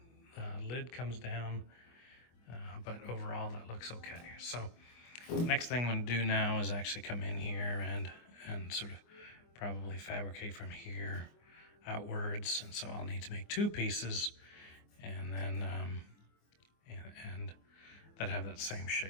lid comes down. But overall, that looks okay. So next thing I'm gonna do now is actually come in here and sort of probably fabricate from here outwards. And so I'll need to make 2 pieces and then and that have that same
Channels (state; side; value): late; right; 24 ms